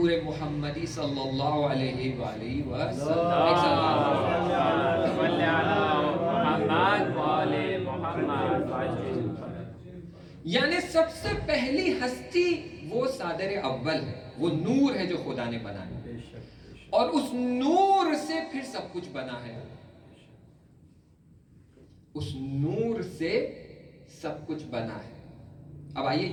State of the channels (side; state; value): both; identical; correlation 1.00